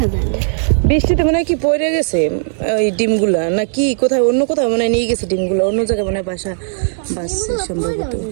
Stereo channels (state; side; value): silent; left; digital silence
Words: যায় না, বৃষ্টিতে মনে হয় কি পড়ে গেছে ওই ডিমগুলা, না কি কোথায় অন্য কোথাও মনে হয় নিয়ে গেছে ডিমগুলো, অন্য জায়গায় মনে হয় বাসা বাসছে সম্ভবত।